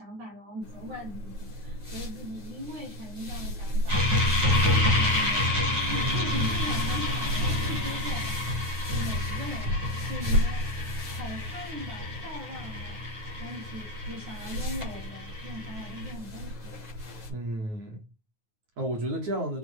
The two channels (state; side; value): late; left; 9.4 ms